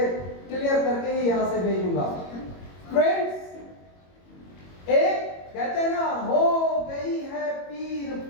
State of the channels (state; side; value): late; right; 22 ms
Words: क्लियर करके ही यहां से भेजूंगा। फ्रेंड्स, एक कहते हैं ना, हो गई है पीर